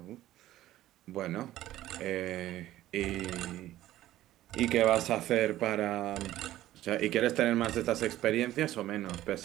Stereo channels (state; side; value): quieter; left; 14.4 dB